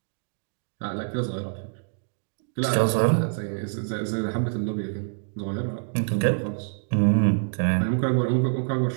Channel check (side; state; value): left; silent; digital silence